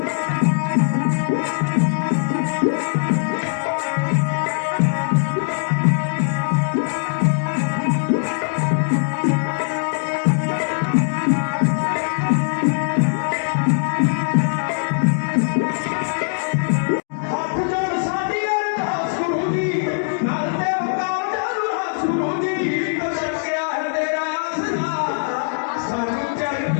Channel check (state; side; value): silent; right; digital silence